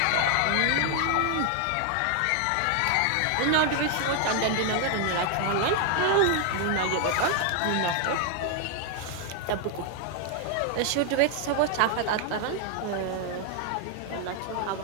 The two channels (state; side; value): different; both; correlation 0.00